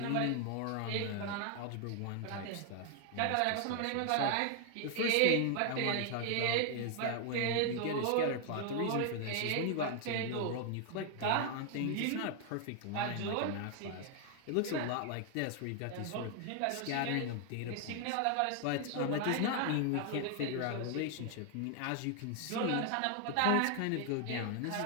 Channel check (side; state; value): both; different; correlation 0.00